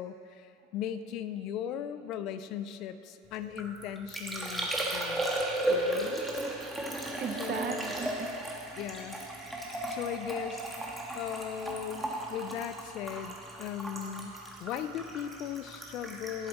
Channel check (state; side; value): normal; both; correlation 0.44